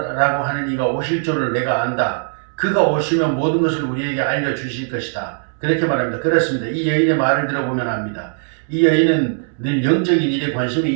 하는 이가 오실 줄을 내가 안다. 그가 오시면 모든 것을 우리에게 알려주실 것이다. 그렇게 말합니다. 그렇습니다. 이 여인의 말을 들어보면 압니다. 이 여인은 늘 영적인 일에 관심이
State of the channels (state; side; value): silent; left; 66 dB below the other